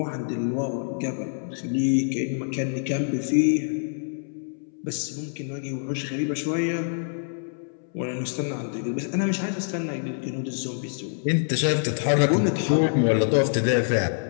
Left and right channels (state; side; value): silent; right; 61 dB below the other